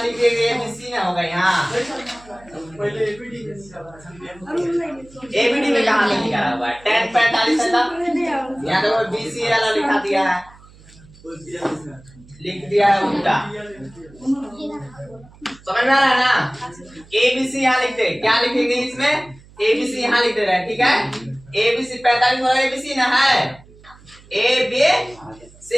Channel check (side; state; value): right; noise; hum, 24 dB below the sound